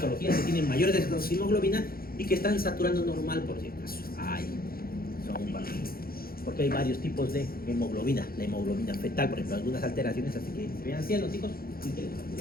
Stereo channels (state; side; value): late; right; 0.43 ms